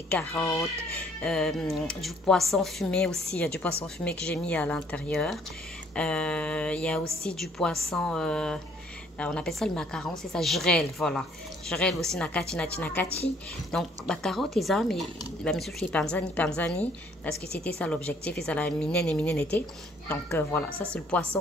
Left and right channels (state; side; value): normal; both; correlation 0.62